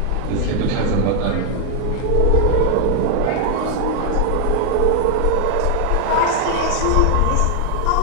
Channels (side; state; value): both; different; correlation 0.00